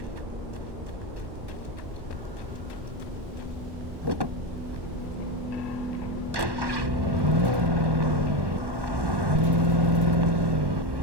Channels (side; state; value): left; late; 1.1 ms